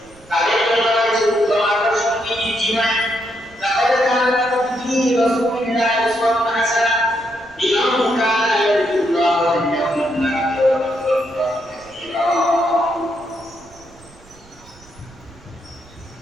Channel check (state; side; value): noise; right; rumble, 26 dB below the sound